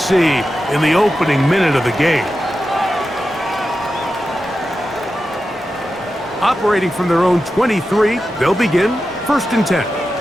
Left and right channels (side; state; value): both; normal; correlation 0.91